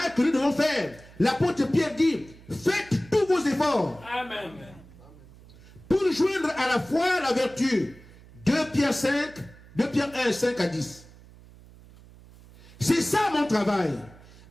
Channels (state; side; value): noise; right; hum, 22 dB below the sound